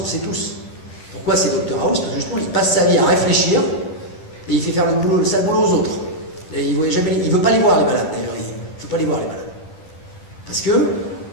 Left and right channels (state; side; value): late; right; 10 ms